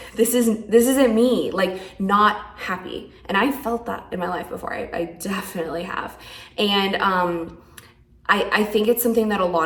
this isn't me, like not happy. And I felt that in my life before. I definitely have. And I think it's something that a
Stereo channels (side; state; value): both; identical; correlation 1.00